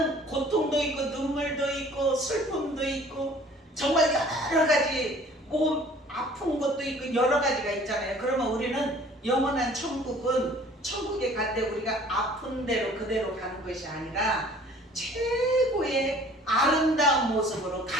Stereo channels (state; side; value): normal; both; correlation 0.52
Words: 고통도 있고 눈물도 있고 슬픔도 있고 정말 여러 가지 몸 아픈 것도 있고 여러 가지가 있잖아요. 그러면 우리는 영원한 천국은 천국에 갈 때 우리가 아픈 대로 그대로 가는 것이 아니라 최고의 아름다운 모습으로